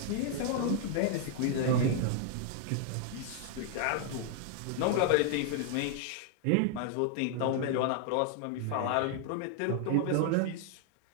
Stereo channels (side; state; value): both; different; correlation 0.00